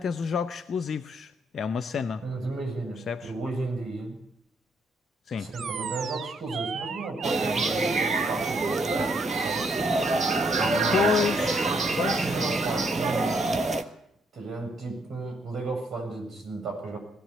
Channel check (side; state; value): both; normal; correlation 0.71